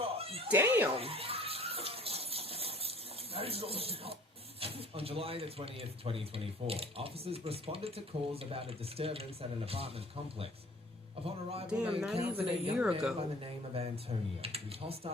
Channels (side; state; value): both; normal; correlation 0.51